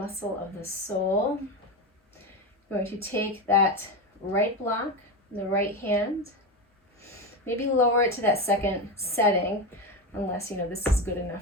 of the soul. You're going to take that right block, the right hand, maybe lower it to that second setting, unless you know this is good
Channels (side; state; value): both; normal; correlation 0.17